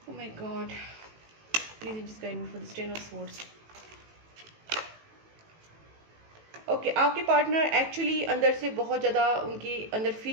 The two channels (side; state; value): left; late; 18 ms